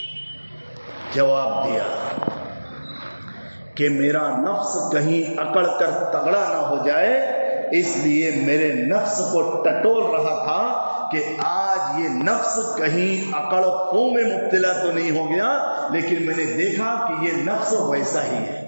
جواب دیا کہ میرا نفس کہیں اکڑ کر تگڑا نہ ہو جائے، اس لیے میرے نفس کو ٹٹول رہا تھا کہ آج یہ نفس کہیں اکڑ خوں میں مبتلا تو نہیں ہو گیا، لیکن میں نے دیکھا کہ یہ نفس ویسا ہی ہے،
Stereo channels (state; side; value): inverted; both; correlation -1.00